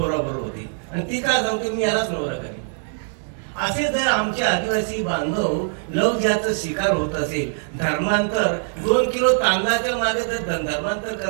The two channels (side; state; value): left; silent; 62 dB below the other